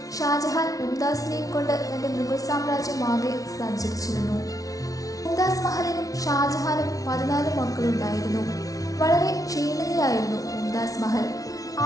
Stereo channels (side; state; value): right; late; 0.18 ms